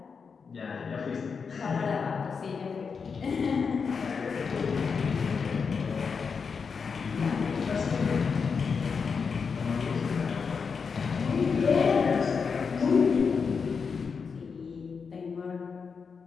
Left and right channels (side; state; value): right; quieter; 5.6 dB